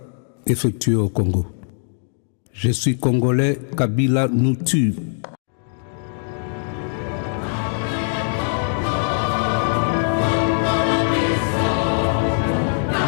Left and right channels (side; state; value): right; silent; digital silence